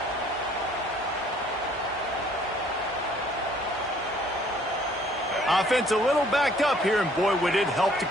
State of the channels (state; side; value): normal; both; correlation 0.59